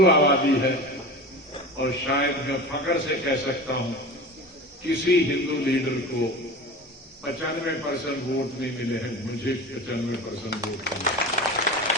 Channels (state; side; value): normal; both; correlation 0.32